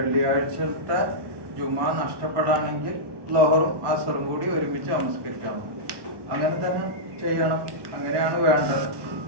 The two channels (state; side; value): late; left; 1.2 ms